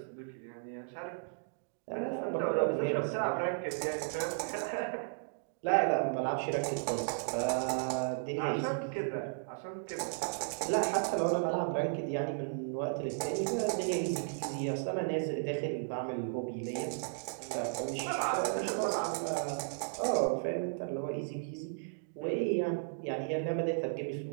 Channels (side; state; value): left; silent; digital silence